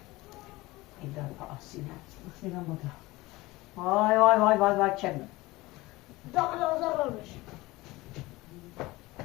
این دار آسینه آسینه بوده وای وای وای وای وای چه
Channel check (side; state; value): right; quieter; 20.4 dB